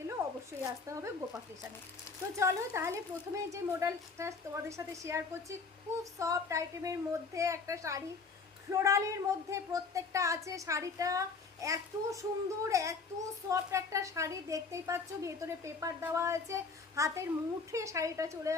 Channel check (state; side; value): quieter; right; 4.7 dB